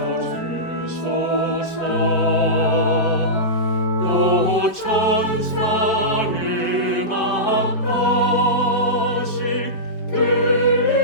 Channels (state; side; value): late; right; 4.6 ms